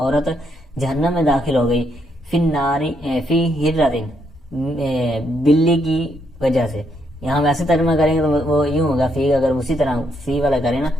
جہنم میں داخل ہو گئی، فی الناری فی ہررتن، بلی کی وجہ سے. یہاں ویسے ترجمہ کریں گے تو وہ یوں ہوگا، فی اگر اسی طرح فی والا کریں نا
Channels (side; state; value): both; normal; correlation 0.76